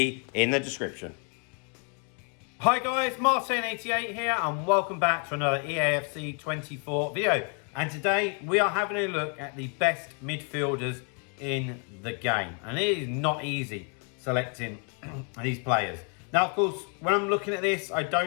in the description. Hi guys, Martin88 here and welcome back to another Eafc 24 video. And today we are having a look at the best midfielders in the game. And it is not easy selecting these players. Now, of course, when I'm looking at this, I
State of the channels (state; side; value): quieter; right; 39.6 dB